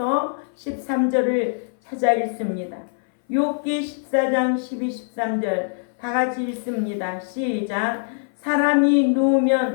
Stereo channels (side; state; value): right; silent; 59 dB below the other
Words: 13절을 찾아 읽습니다. 욥기 14장 12, 13절 다 같이 읽습니다. 시작. 사람이